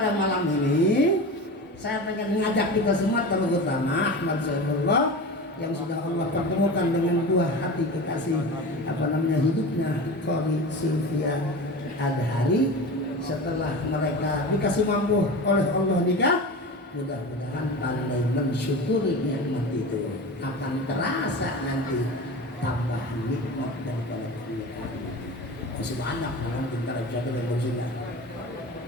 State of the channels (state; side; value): normal; both; correlation 0.30